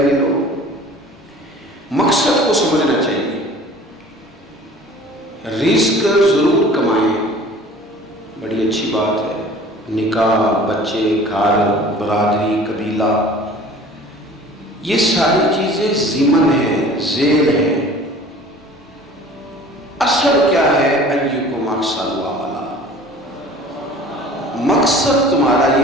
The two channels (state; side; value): normal; both; correlation 0.46